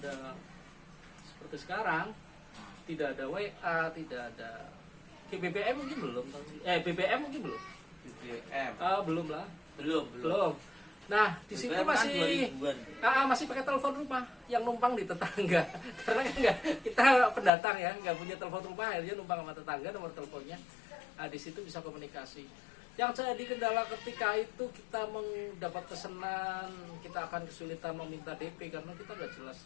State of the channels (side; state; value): right; drops out; at 17.5 s